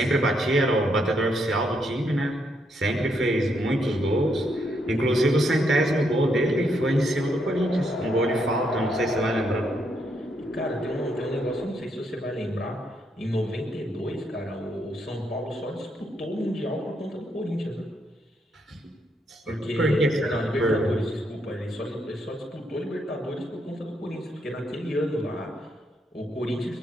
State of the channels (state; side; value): normal; both; correlation 0.76